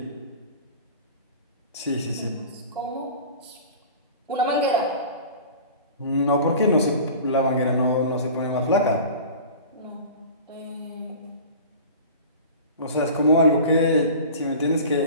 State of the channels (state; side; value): inverted; both; correlation -0.39